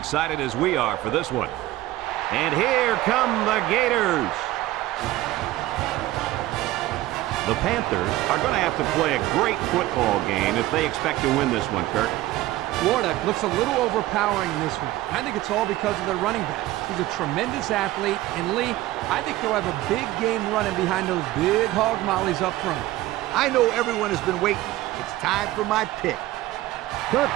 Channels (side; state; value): left; quieter; 16.5 dB